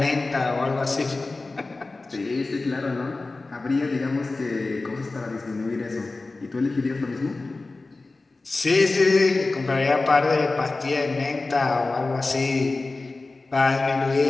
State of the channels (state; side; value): quieter; right; 3.4 dB